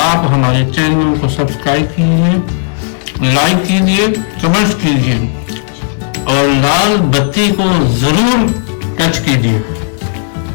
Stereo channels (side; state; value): right; silent; digital silence